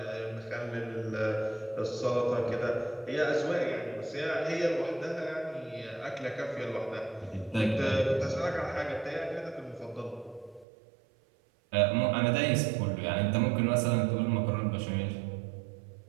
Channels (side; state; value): left; drops out; at 10.7 s